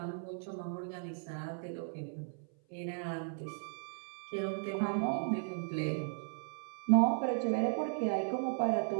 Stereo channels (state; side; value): silent; left; 54 dB below the other